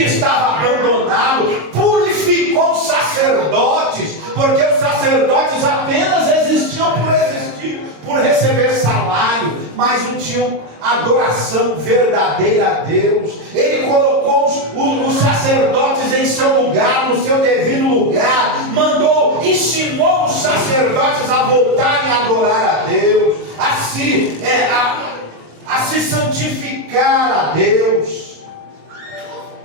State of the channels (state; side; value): late; left; 26 ms